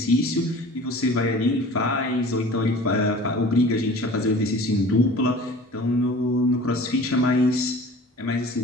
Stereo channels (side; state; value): both; normal; correlation 0.43